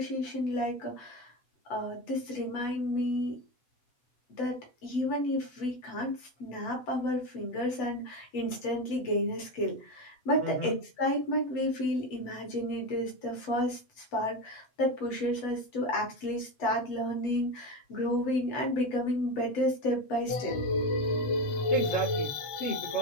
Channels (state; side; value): late; right; 8.0 ms